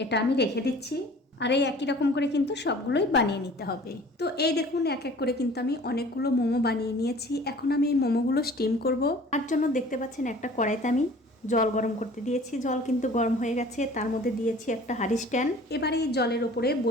আমি রেখে দিচ্ছি। আর এই একই রকম করে কিন্তু সবগুলোই বানিয়ে নিতে হবে। তো এই দেখুন এক এক করে কিন্তু আমি অনেকগুলো মোমো বানিয়ে নিয়েছি। এখন আমি এই মোমোগুলো স্টিম করব। তার জন্য দেখতে পাচ্ছেন একটা কড়াইতে আমি জল গরম করতে দিয়েছি। জল কিন্তু গরম হয়ে গেছে, তার মধ্যে দিয়েছি একটা হাঁড়ি স্ট্যান্ড। এবারে এই জলের ওপরে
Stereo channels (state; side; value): normal; both; correlation 0.47